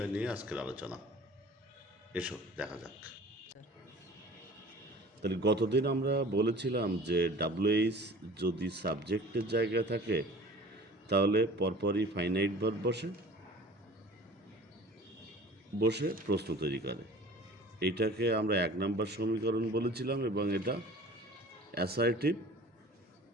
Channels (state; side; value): normal; both; correlation 0.44